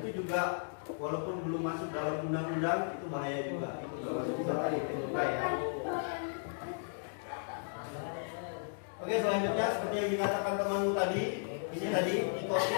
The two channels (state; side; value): silent; right; digital silence